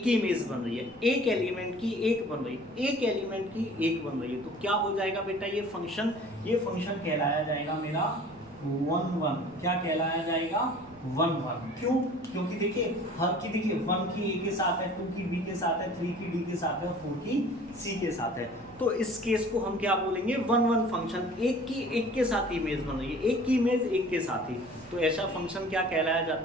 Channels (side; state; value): right; noise; rumble, 25 dB below the sound